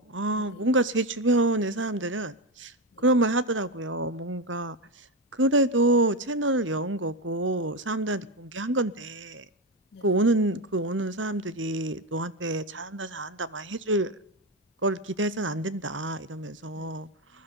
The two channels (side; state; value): both; normal; correlation 0.13